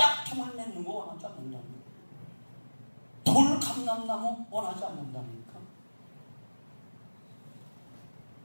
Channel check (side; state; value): both; inverted; correlation -1.00